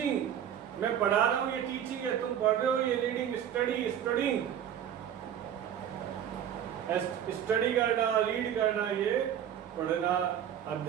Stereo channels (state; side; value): quieter; left; 9.6 dB